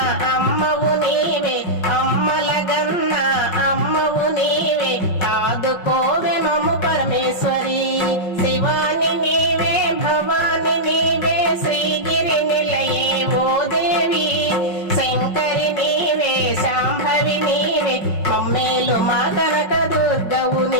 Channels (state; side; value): late; right; 5.4 ms